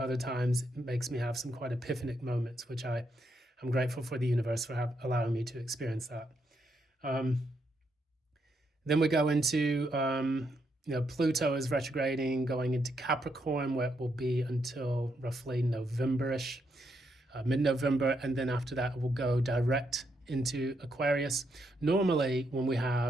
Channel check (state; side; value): normal; both; correlation 0.78